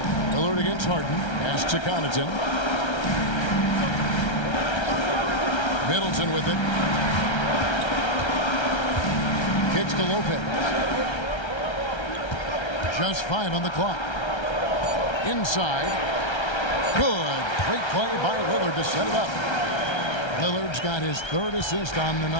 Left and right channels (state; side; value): late; right; 1.3 ms